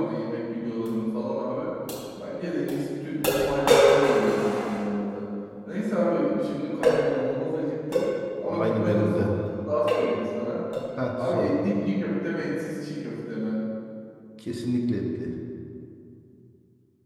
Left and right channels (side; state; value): both; identical; correlation 1.00